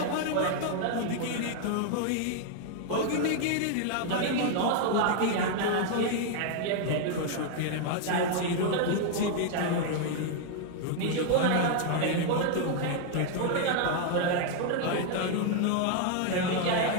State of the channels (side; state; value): both; different; correlation 0.00